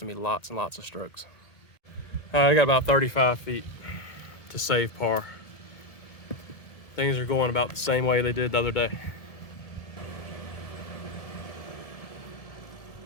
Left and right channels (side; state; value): right; late; 1.8 ms